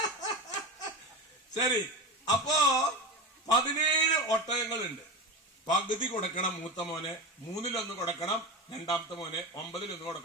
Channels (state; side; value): normal; both; correlation 0.22